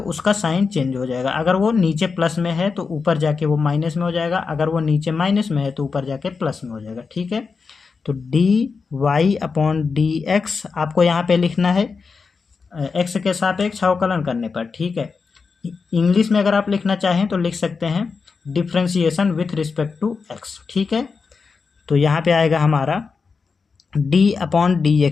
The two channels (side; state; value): right; quieter; 5.0 dB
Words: साइन चेंज हो जाएगा। अगर वो नीचे प्लस में है तो ऊपर जाके वो माइनस में हो जाएगा, अगर वो नीचे माइनस में है तो ऊपर जाके प्लस में हो जाएगा। ठीक है, तो dy/dx आपको यहाँ पे लिखना है x के सापेक्ष अवकलन करने पर। ठीक है, इंग्लिश में अगर आप लिखना चाहें तो लिख सकते हैं differentiation with respect to x। ठीक है, तो यहाँ पे आएगा हमारा